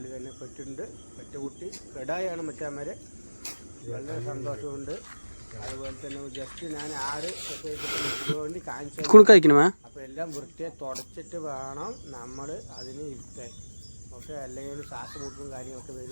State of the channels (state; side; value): inverted; both; correlation -1.00